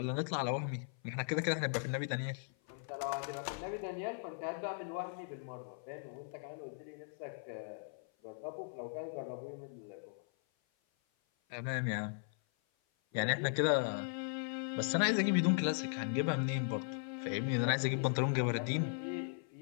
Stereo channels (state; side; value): silent; right; 52 dB below the other